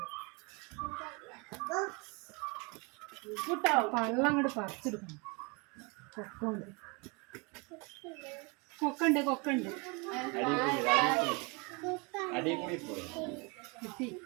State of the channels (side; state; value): left; quieter; 30.1 dB